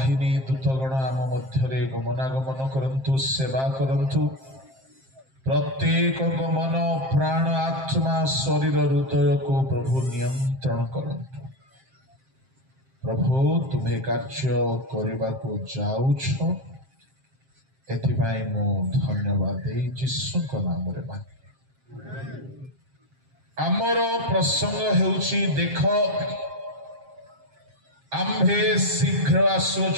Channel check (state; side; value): late; left; 7.6 ms